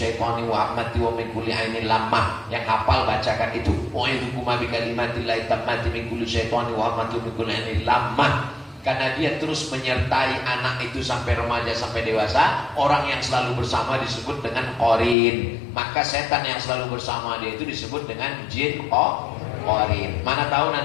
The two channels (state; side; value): drops out; right; at 15.2 s